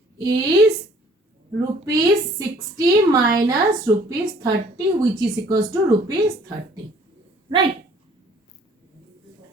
is rupees 60 minus rupees 30, which is equals to rupees 30. Right?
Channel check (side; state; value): both; normal; correlation 0.56